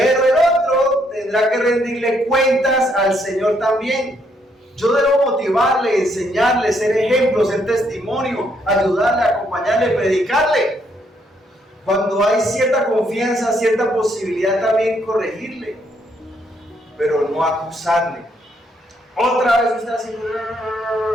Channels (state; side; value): normal; both; correlation 0.72